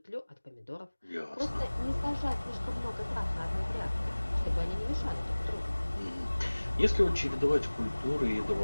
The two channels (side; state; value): both; inverted; correlation -1.00